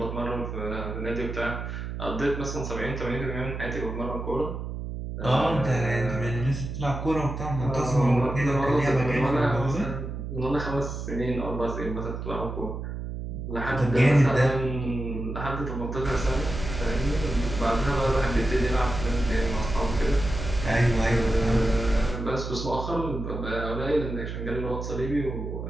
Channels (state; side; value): noise; right; hum, 6 dB below the sound